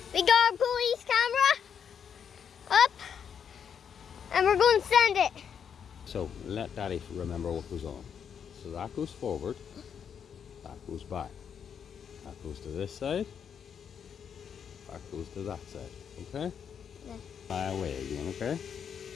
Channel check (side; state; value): right; quieter; 7.6 dB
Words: We got our police camera up, and we're going to send it. So let Daddy remember what goes on. So that goes forward, that goes back, that goes to this side, that goes to that side. Okay? Yeah. Fly away again, okay?